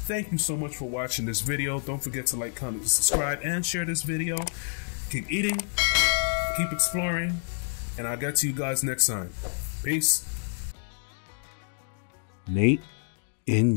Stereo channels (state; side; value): silent; right; digital silence